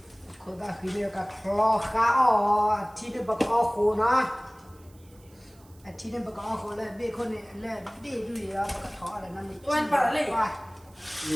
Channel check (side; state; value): right; noise; hiss, 29 dB below the sound